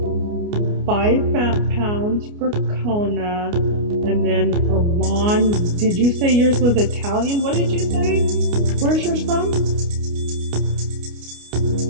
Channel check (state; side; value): late; left; 29 ms